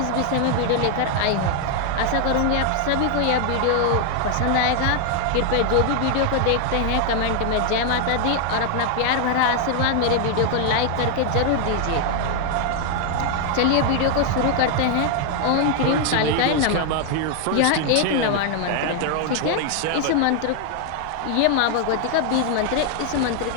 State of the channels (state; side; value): different; both; correlation 0.00